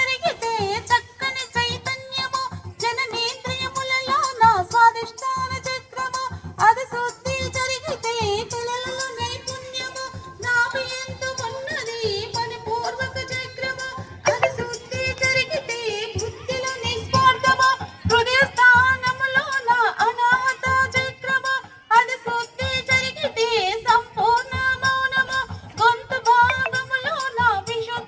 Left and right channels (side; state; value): both; identical; correlation 1.00